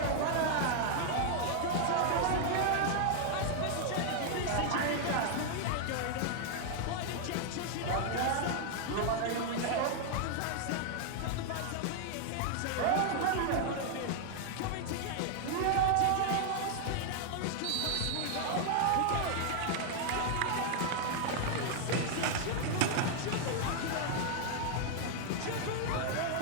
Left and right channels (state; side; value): different; both; correlation 0.00